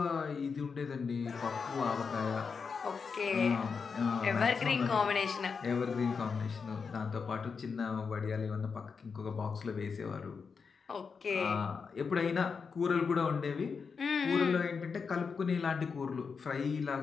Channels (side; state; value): right; quieter; 5.5 dB